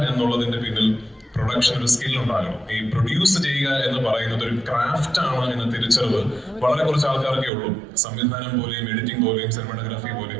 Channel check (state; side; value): drops out; left; at 7.5 s